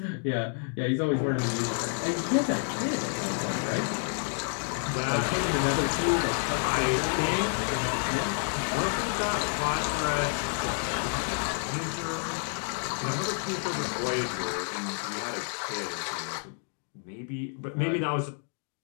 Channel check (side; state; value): right; silent; 58 dB below the other